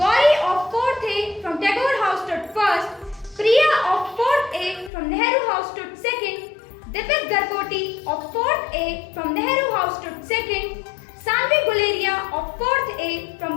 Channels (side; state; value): right; drops out; at 4.9 s